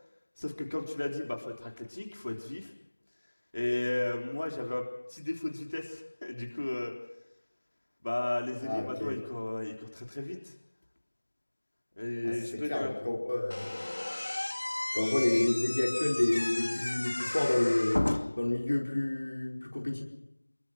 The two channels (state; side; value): inverted; both; correlation -1.00